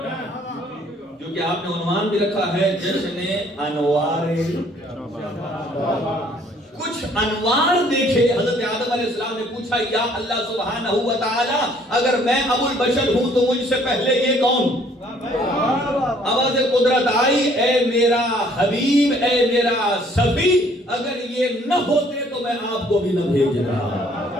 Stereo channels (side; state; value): both; normal; correlation 0.61